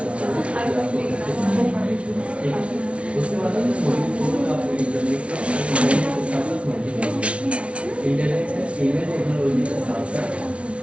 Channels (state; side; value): late; left; 0.061 ms